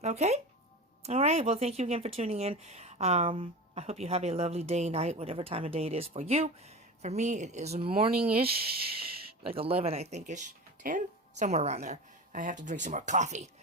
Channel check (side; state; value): both; normal; correlation 0.29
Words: okay? All right, well, thank you again for tuning in. I hope you have a lovely day, night, whatever time of day it is for you. For me, it is morning-ish, like 11, I think-ish, 10, somewhere around there. I have to drink some more coffee.